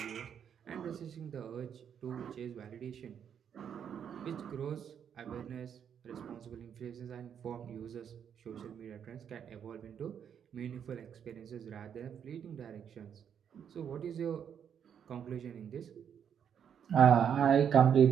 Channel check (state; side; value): quieter; left; 8.2 dB